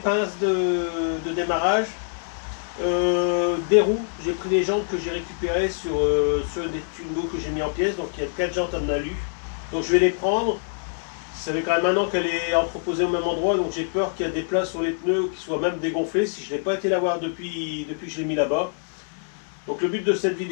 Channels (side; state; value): right; silent; digital silence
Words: de démarrage, des roues. J'ai pris les jantes que j'ai récupérées sur des Twingo que j'ai mis en pièces. Donc il y a 4 jantes en alu. Donc je vais les prendre. Ça fait quand même 1 an qu'elle est entreposée au même endroit, donc j'ai peur qu'il y a des places sur les pneus qui soient même dégonflés si je n'ai pas été la voir depuis que je l'ai mis là-bas. Donc le but de cette